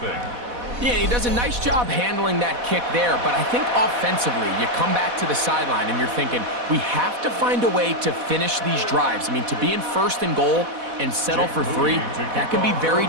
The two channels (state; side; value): late; left; 4.1 ms